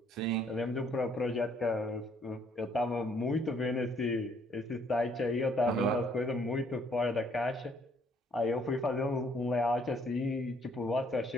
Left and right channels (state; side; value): normal; both; correlation 0.65